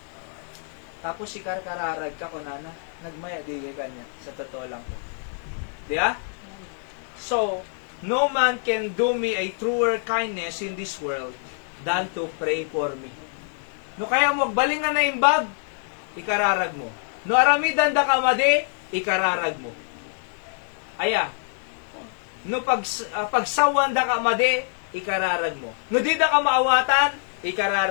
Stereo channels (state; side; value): silent; right; 59 dB below the other